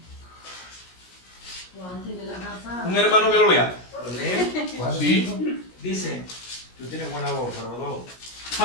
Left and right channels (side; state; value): right; late; 17 ms